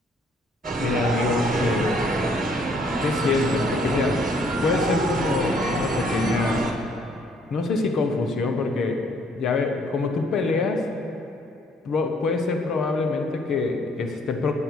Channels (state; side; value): normal; both; correlation 0.64